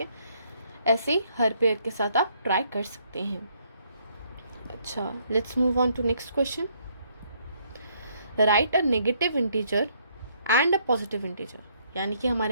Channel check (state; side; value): inverted; both; correlation -0.68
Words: ऐसे ही हर पेयर के साथ आप ट्राई कर सकते हैं। अच्छा, let's move on to next question. Write a negative integer and a positive integer, यानी कि